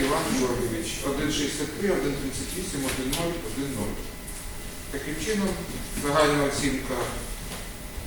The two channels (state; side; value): identical; both; correlation 1.00